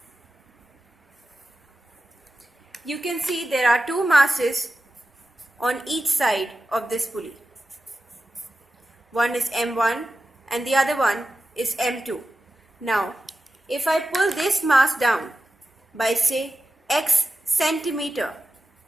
You can see there are two masses on each side of this pulley. One is M1 and the other one is M2. Now, if I pull this mass down by say X centimeter,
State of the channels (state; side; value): normal; both; correlation 0.93